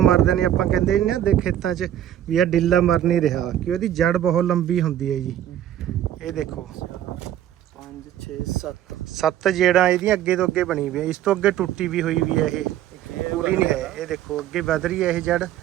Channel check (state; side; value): quieter; left; 11.7 dB